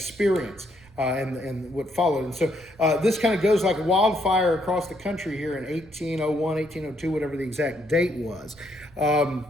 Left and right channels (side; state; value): right; noise; rumble, 25 dB below the sound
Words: And what followed. And so this kind of goes like wildfire across the country here in 1801, 1802, whatever the exact date was.